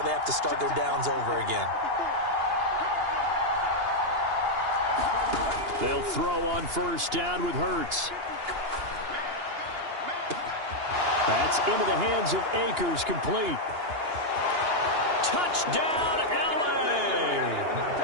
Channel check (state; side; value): late; left; 2.9 ms